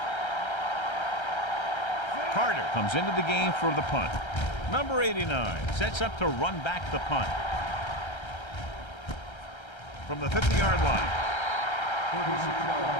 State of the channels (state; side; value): late; right; 1.3 ms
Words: Carter comes into the game for the punt. Number 89 sets up to run back the punt. From the 50-yard line. 36-yard